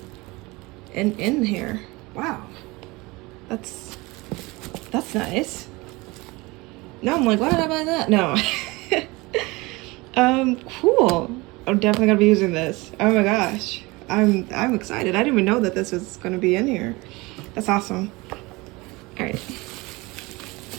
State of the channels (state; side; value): quieter; left; 23.3 dB